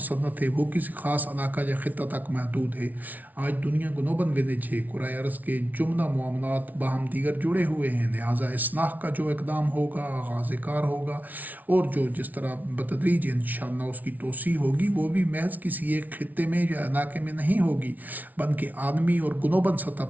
ہے، وہ کسی خاص علاقہ یا خطہ تک محدود ہے۔ آج دنیا گلوبل ولیج ہے، کرۂ ارض کے جملہ معاملات باہم دیگر جڑے ہوئے ہیں، لہٰذا اصلاح کا جو اقدام ہوگا، آغاز کار ہوگا، اور جو جس طرح بتدریج انشاءاللہ اس کی توسیع ہوگی، وہ بھی محض کسی ایک خطے میں یا علاقے میں نہیں ہوگی، بلکہ عالمی اور گلوبل سطح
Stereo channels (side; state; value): left; late; 0.077 ms